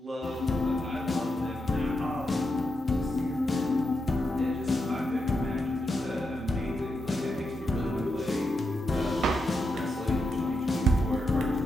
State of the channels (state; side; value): normal; both; correlation 0.85